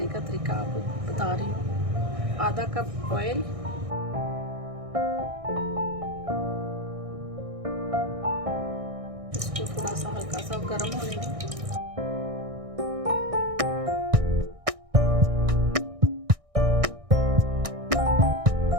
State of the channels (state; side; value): late; left; 1.6 ms